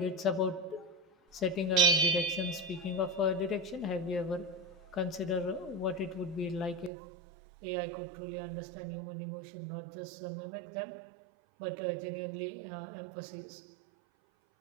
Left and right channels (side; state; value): left; drops out; at 6.9 s